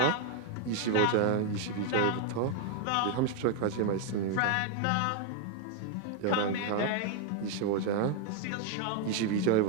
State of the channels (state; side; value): different; both; correlation 0.00